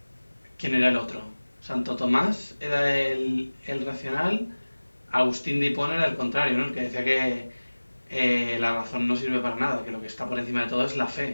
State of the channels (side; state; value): both; inverted; correlation -1.00